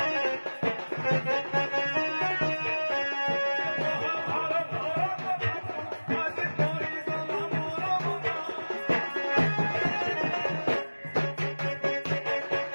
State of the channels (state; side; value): inverted; both; correlation -1.00